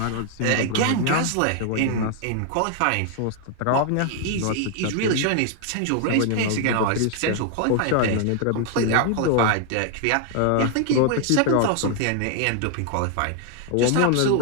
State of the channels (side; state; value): both; different; correlation 0.00